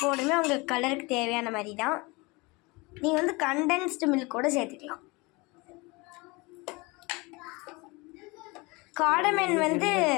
பவுடருமே உங்களுக்கு கலருக்கு தேவையான மாதிரி தான். நீங்கள் வந்து கண்டென்ஸ்டு மில்க் கூட சேர்த்துக்கலாம். காடமன்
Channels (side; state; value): right; quieter; 25.4 dB